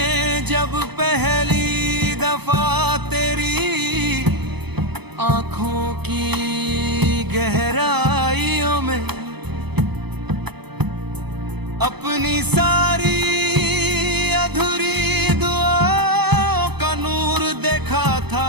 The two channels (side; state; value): left; late; 0.98 ms